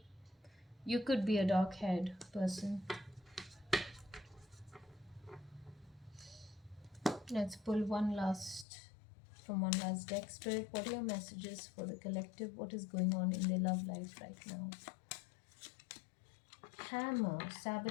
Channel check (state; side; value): drops out; right; at 8.7 s